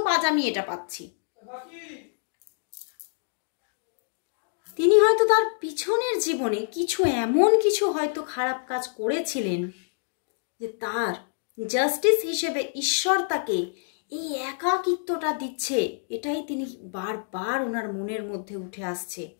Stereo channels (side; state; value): right; silent; digital silence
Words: আজ আমি এটা পাচ্ছি। তিনি হয়তো তার পিছনের জীবনে এমন কিছু হয়তো খারাপ কাজ করেছিলেন যে তার জাস্টিস হিসেবে ঈশ্বর তাকে এই একাকিত্বটা দিচ্ছে, এটাই তিনি বারবার ওনার মনের মধ্যে উঠে আসছে।